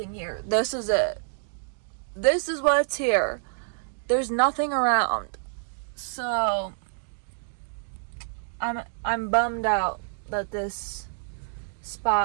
here. This is it. This is what's here. There's nothing around. So I'm bummed out that this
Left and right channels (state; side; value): silent; left; digital silence